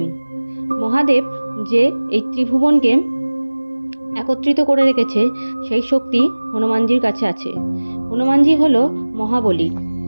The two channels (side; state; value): both; inverted; correlation -1.00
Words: মহাদেব যে এই ত্রিভুবনকে একত্রিত করে রেখেছে, সেই শক্তি হনুমানজির কাছে আছে। হনুমানজি হলো মহাবলী।